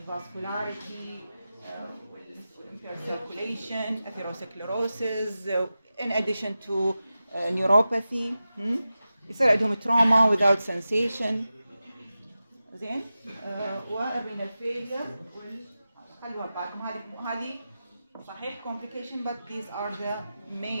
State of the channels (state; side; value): inverted; both; correlation -0.93